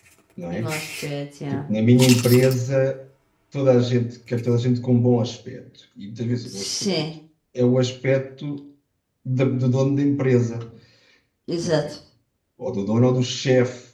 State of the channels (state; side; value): identical; both; correlation 1.00